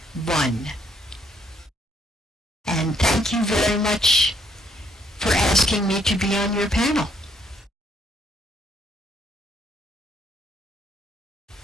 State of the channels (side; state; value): both; normal; correlation 0.69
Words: one. And thank you very much for asking me to be on your panel.